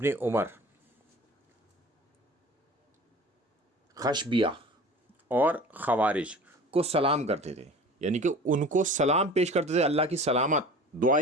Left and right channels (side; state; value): both; normal; correlation 0.41